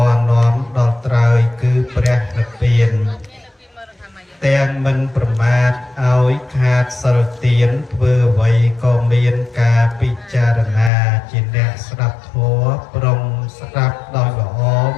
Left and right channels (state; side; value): drops out; right; at 10.9 s